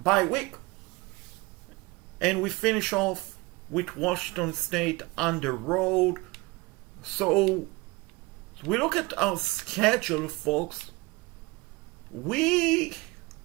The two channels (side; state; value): left; quieter; 23.8 dB